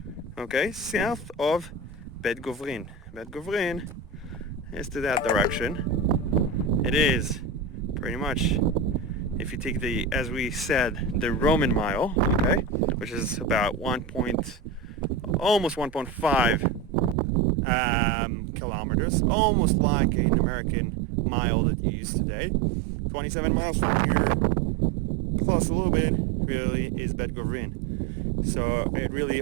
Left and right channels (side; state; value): left; drops out; at 17.2 s